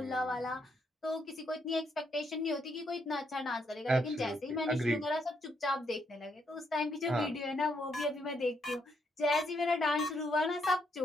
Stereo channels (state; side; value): normal; both; correlation 0.76